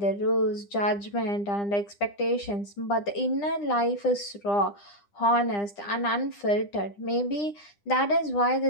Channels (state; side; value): late; right; 9.9 ms